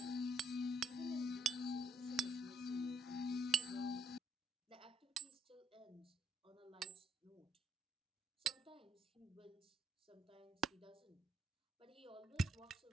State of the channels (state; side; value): normal; both; correlation 0.70